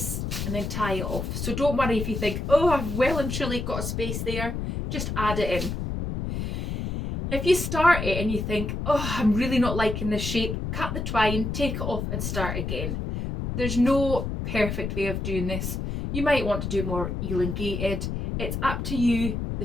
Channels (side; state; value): left; noise; rumble, 3 dB below the sound